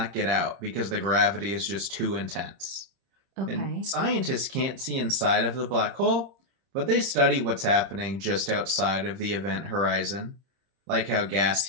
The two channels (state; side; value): late; left; 30 ms